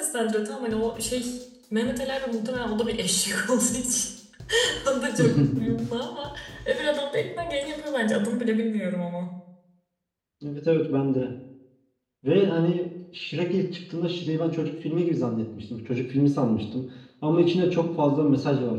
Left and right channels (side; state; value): both; identical; correlation 1.00